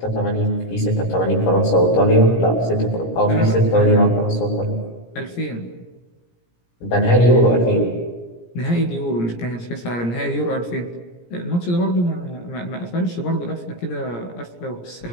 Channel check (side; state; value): right; late; 17 ms